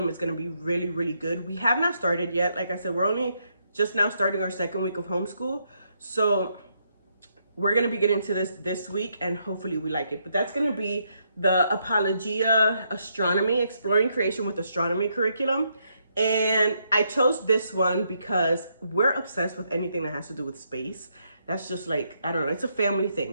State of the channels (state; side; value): inverted; both; correlation -0.77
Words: is going to be really, really good. We have not started yet. Like I said, we're only just now starting our second week of homeschool. So we're going to be getting to this week, and hopefully we like it. But that's going to be the Apologia Astronomy, Exploring Creation with Astronomy curriculum. And I chose this one because we're obsessed with anything that has to do with space. That's just like, I don't know, it's a family